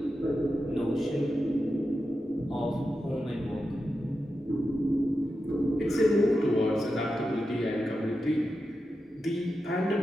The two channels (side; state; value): both; normal; correlation 0.90